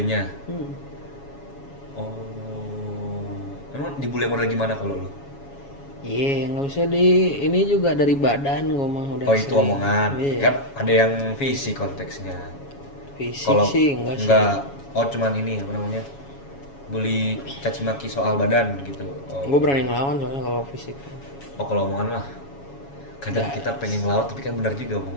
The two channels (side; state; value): right; late; 7.2 ms